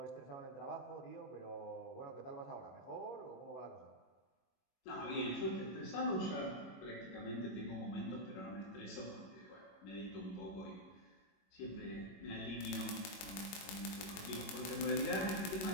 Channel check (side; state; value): right; late; 21 ms